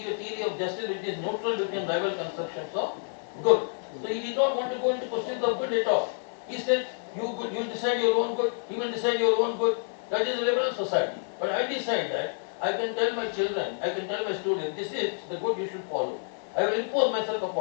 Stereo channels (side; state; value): right; silent; 59 dB below the other